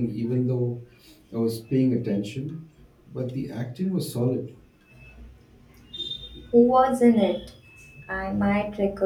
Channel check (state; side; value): identical; both; correlation 1.00